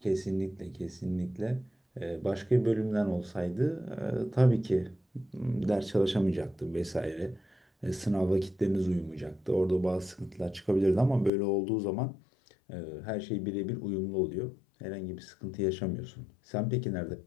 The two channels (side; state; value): right; drops out; at 11.3 s